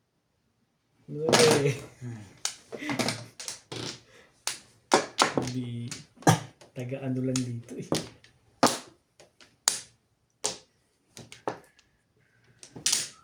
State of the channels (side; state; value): both; identical; correlation 1.00